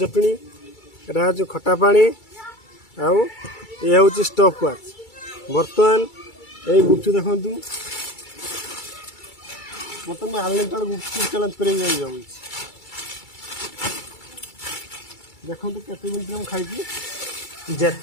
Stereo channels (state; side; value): late; right; 2.3 ms